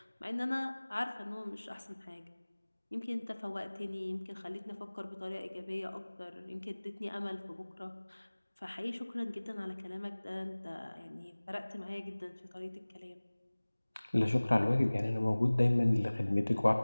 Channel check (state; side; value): inverted; both; correlation -1.00